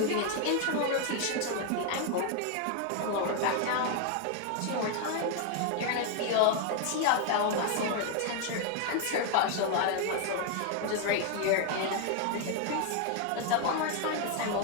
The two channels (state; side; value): different; both; correlation 0.00